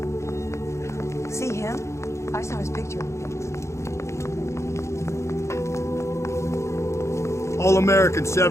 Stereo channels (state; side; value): late; right; 0.14 ms